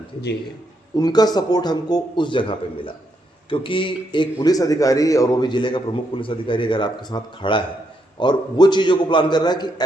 थी। जी, उनका सपोर्ट हमको उस जगह पे मिला, क्योंकि एक पुलिस अधिकारी और वो भी जिले का प्रमुख पुलिस अधिकारी अगर आपके साथ खड़ा है और वो चीज़ों को प्लान कर रहा है कि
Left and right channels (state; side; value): normal; both; correlation 0.79